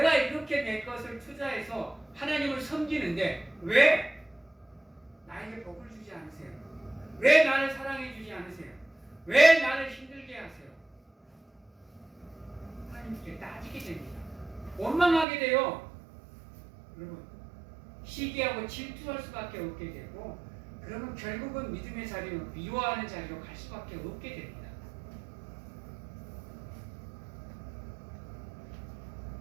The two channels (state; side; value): drops out; left; at 15.2 s